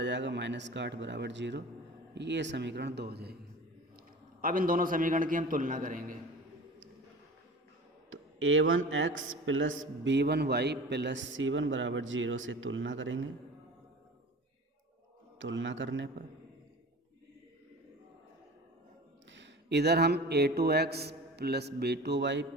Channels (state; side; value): normal; both; correlation 0.38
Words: जाएगा -8 = 0, ये समीकरण 2 हो जाएगी। अब इन दोनों समीकरण की हम तुलना करेंगे। तो a1x + b1y + c1 = 0 से तुलना करेंगे। तुलना करने पर इधर हम a2x + b2y